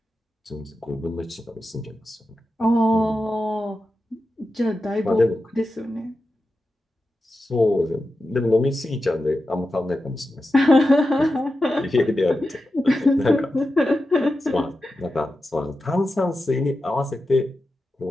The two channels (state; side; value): normal; both; correlation 0.91